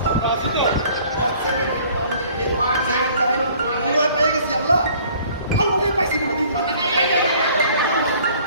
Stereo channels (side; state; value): both; inverted; correlation -0.55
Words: পেয়ে গেছি। আল্লাহ পাইছি